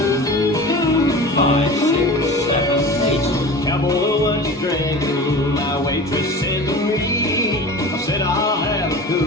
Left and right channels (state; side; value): normal; both; correlation 0.35